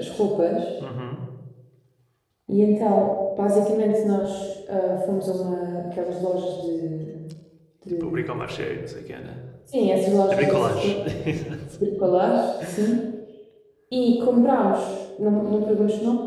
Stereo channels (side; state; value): both; identical; correlation 1.00